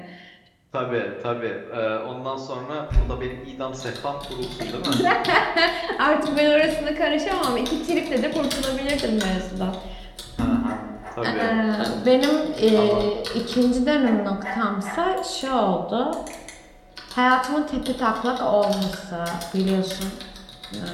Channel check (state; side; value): identical; both; correlation 1.00